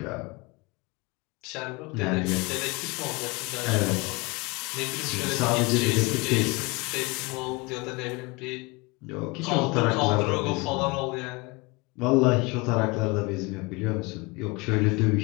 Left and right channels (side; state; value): right; quieter; 25.5 dB